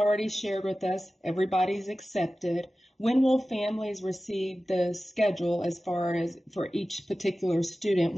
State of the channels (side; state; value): both; normal; correlation 0.95